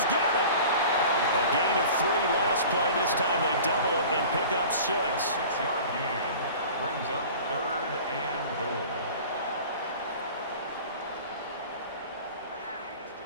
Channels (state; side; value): inverted; both; correlation -0.41